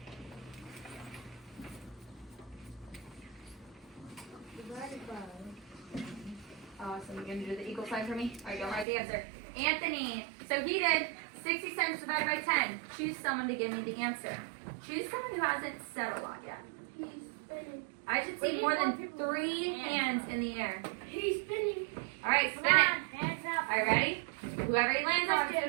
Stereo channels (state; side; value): drops out; left; at 8.8 s